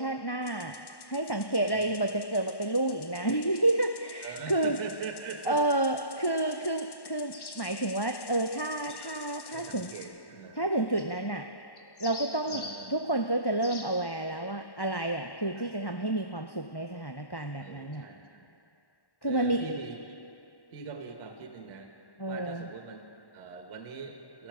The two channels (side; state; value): right; late; 1.1 ms